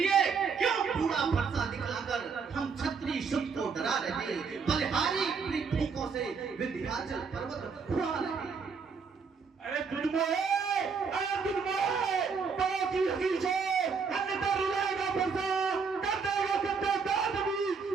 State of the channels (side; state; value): left; quieter; 5.5 dB